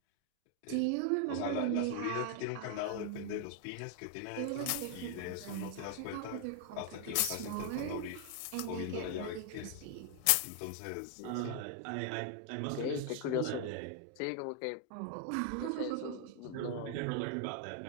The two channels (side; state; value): both; different; correlation 0.00